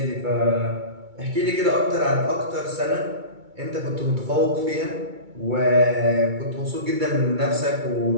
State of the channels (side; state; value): left; late; 2.3 ms